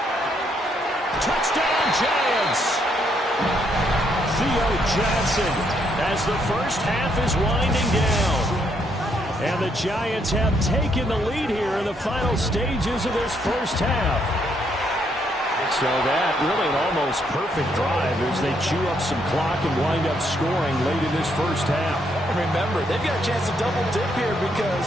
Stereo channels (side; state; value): both; normal; correlation 0.73